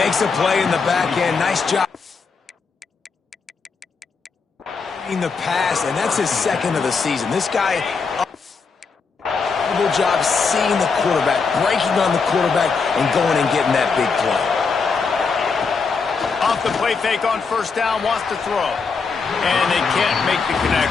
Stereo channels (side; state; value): right; quieter; 5.0 dB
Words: a play in the back end. Nice job in the pass, and that's his 2nd of the season. This guy incredible job seeing the quarterback, breaking on the quarterback, and going and getting that big play. Off the play fake on first down, wants to throw. And they can't make the